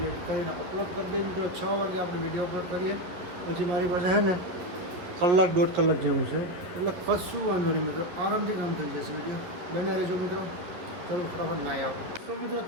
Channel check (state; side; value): late; left; 11 ms